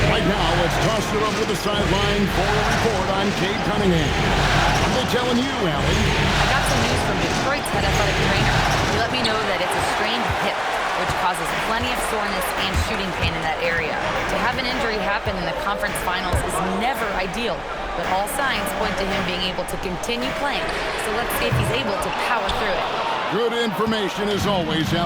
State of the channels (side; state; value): both; identical; correlation 1.00